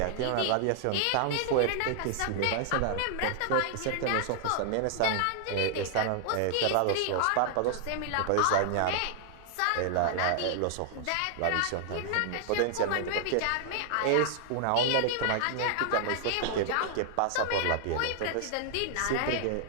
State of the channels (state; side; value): different; both; correlation -0.01